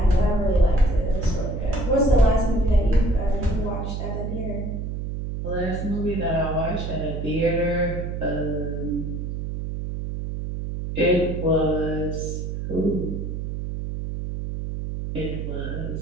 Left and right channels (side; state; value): right; noise; hum, 4 dB below the sound